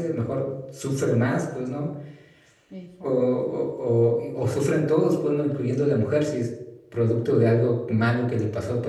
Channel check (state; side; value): identical; both; correlation 1.00